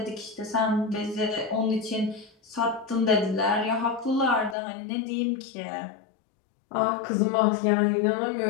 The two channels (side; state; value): right; drops out; at 4.5 s